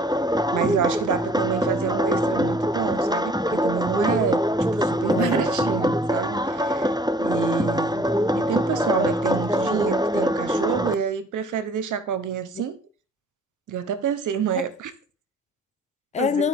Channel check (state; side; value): normal; both; correlation 0.54